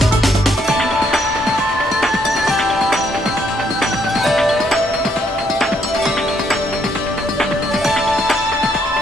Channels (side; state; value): both; normal; correlation 0.71